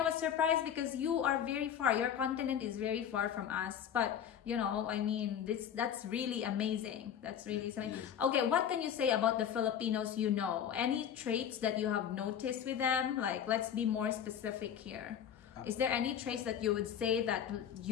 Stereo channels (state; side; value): quieter; right; 8.9 dB